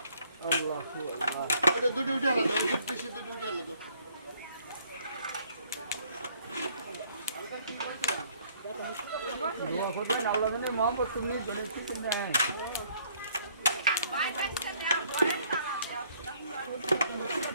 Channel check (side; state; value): both; inverted; correlation -0.63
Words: দুটি উঠে আলাদা দুটি উঠে আলাদা